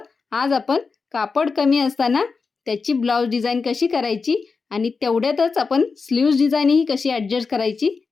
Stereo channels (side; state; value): right; quieter; 4.7 dB